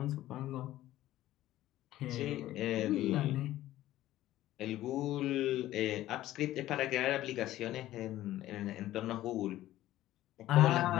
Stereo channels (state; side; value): quieter; right; 14.6 dB